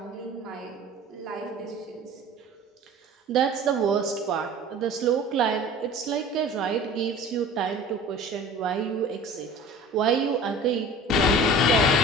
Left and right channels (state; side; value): normal; both; correlation 0.41